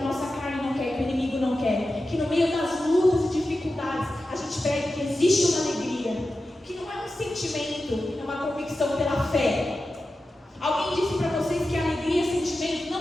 gente prega que existe uma alegria, que não é um sentimento, é uma convicção pela fé. Alguém disse para vocês que alegria é sentimento?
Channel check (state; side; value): normal; both; correlation 0.93